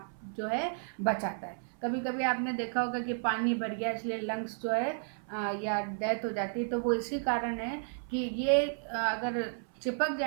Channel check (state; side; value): silent; left; 56 dB below the other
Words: जो है बचाता है। कभी कभी आपने देखा होगा कि पानी भर गया इसलिए लंग्स जो है या डेथ हो जाती है, तो वो इसी कारण है कि ये अगर चिपक